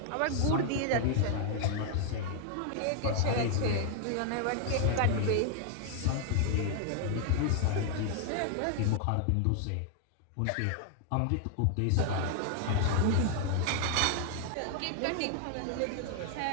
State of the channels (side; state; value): both; different; correlation 0.00